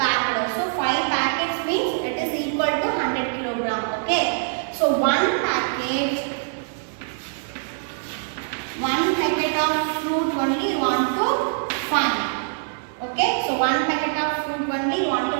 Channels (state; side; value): silent; left; 63 dB below the other